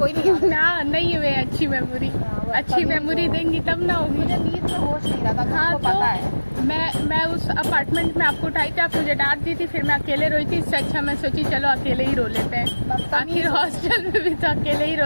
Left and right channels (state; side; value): inverted; both; correlation -1.00